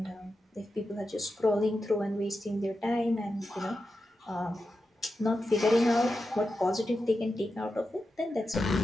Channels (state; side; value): normal; both; correlation 0.90